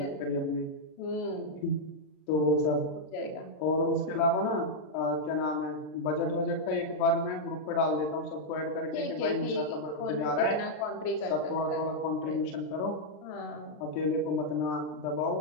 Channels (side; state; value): right; late; 33 ms